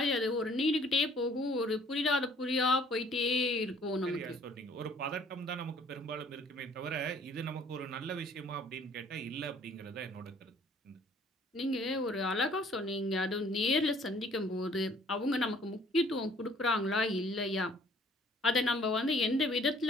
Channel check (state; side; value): normal; both; correlation 0.57